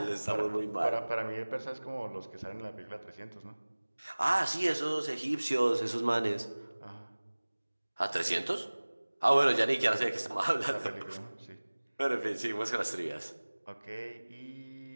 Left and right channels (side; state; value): both; inverted; correlation -1.00